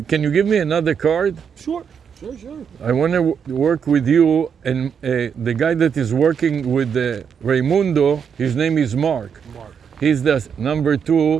Can you give me another card? Sure. I want to work with you, and the guy that is working with Raimundo, his name is Mark. Mark. He's the number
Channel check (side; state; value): left; quieter; 7.1 dB